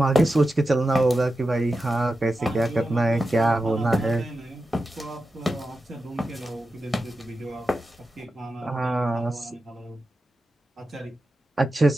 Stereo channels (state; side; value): normal; both; correlation 0.91